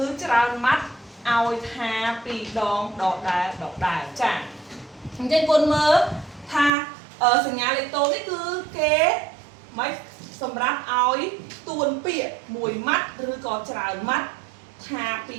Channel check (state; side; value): drops out; left; at 6.7 s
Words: ច្រើនម៉ាត់ឲ្យថាពីរដងដដែលចាអញ្ចឹងគុណមើលថាសញ្ញាលេខតូនេះគឺគេមិនសម្រាប់ឲ្យទួនពាក្យមួយម៉ាត់ឬក៏ច្រើនម៉ាត់ថាពី